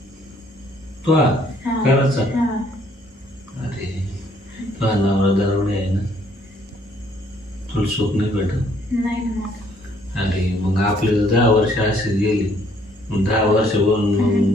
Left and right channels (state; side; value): normal; both; correlation 0.65